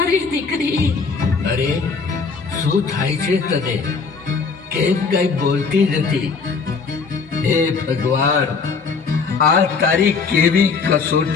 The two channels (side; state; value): right; quieter; 4.9 dB